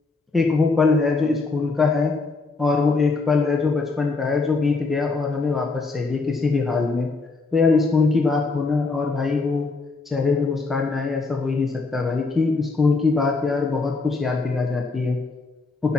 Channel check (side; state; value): right; quieter; 3.9 dB